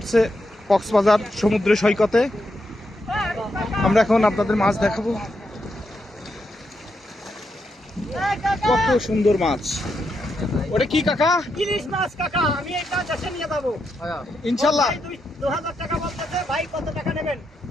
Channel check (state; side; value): normal; both; correlation 0.83